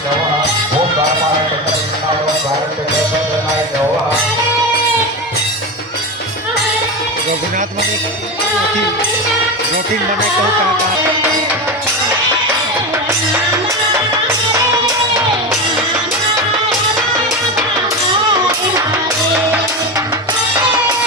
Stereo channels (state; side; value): normal; both; correlation 0.20